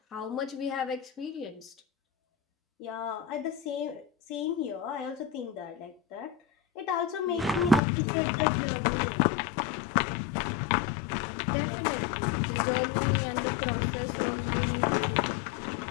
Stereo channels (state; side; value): drops out; right; at 7.8 s